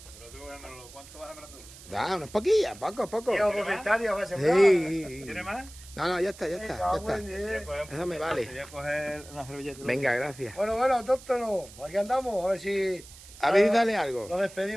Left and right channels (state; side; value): noise; right; hiss, 19 dB below the sound